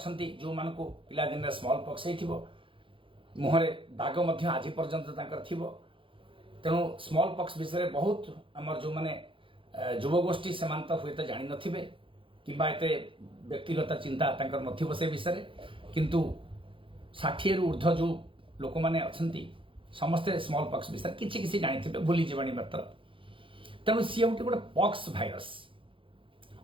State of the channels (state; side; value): late; left; 0.25 ms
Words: जो मान को पिला दिन स्मॉल पॉक्स हो मुहरे दाग आज पर्यंत थी। तेणु स्मॉल पॉक्स विषय बहुत आमर जो मैंने युवगोष्ठी से तो हुए तो जानी नथिबे किंबा एते व्यक्तिगत चिंता तांकर नथिबो से विषय किंतु 60 रु ऊर्ध्व जो लोक माने अछंती समस्ते स्मॉल पॉक्स विषय किछि किछि जानि थिबे भूली जीवानी मात्र। तेणु सी गोटे गोटे पॉक्स भाइरस